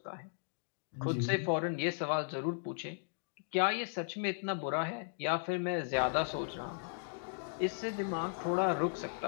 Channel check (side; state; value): right; silent; digital silence